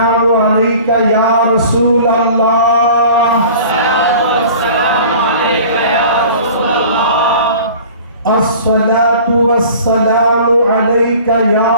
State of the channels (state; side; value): inverted; both; correlation -0.44